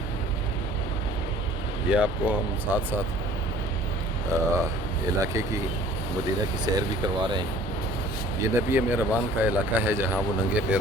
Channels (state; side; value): noise; left; rumble, 15 dB below the sound